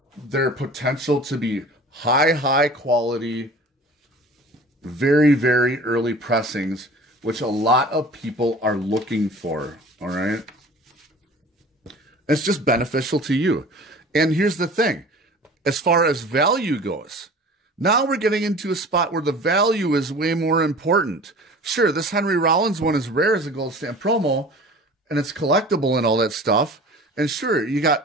their potential to be high quality, very, very early pressings, which a lot of people are looking for. All right. It's just beneficial to you. And here's the thing. As far as value goes, now we're getting into a spot where the value is way more important. Sure, this Henry Rollins one is rare as a gold stamp promo, and it's collectible and all that stuff. And sure, you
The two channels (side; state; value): both; normal; correlation 0.42